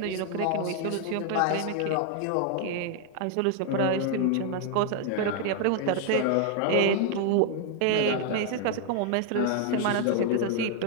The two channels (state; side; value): different; both; correlation 0.00